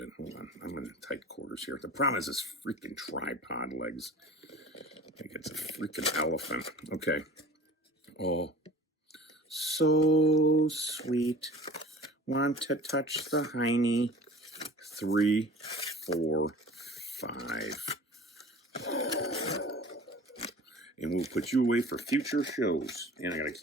Hold on. I'm in tight quarters here. The problem is this freaking tripod legs. I think it's a freaking elephant. Okay. Oh, so sweet. Want to touch the hiney. 3, 4, 5. And we'll put you away for future shows. And I got to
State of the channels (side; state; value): both; normal; correlation 0.43